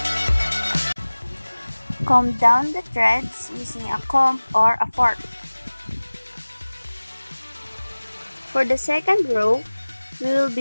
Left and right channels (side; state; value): both; inverted; correlation -1.00